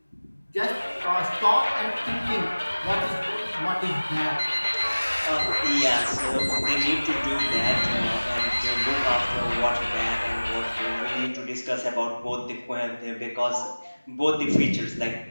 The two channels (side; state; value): both; inverted; correlation -1.00